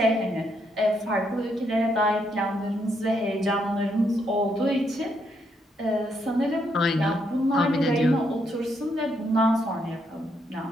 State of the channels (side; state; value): both; normal; correlation 0.76